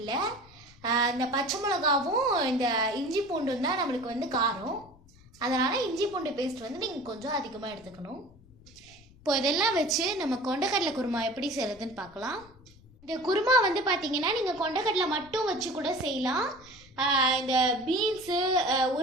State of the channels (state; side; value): noise; left; rumble, 25 dB below the sound